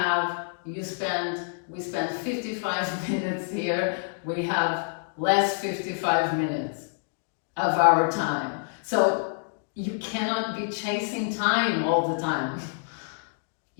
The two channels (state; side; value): silent; right; digital silence